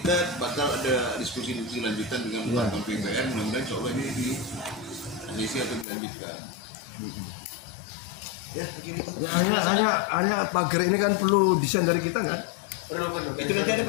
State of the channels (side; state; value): right; drops out; at 5.9 s